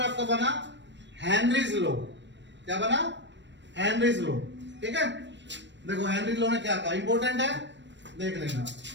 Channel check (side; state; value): left; late; 0.53 ms